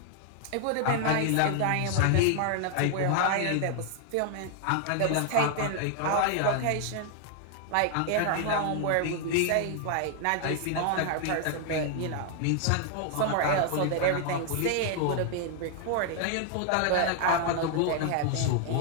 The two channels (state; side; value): different; both; correlation 0.00